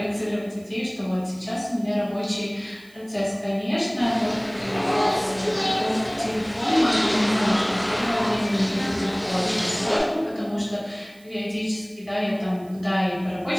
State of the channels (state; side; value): noise; right; hiss, 27 dB below the sound